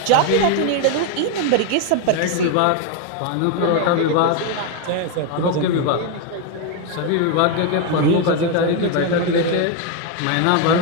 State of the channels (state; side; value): different; both; correlation 0.01